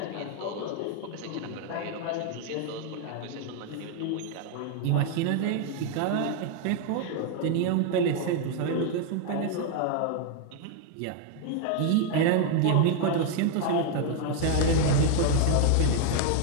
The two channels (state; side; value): different; both; correlation 0.00